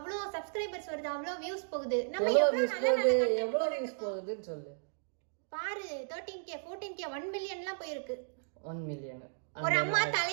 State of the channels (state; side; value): silent; left; digital silence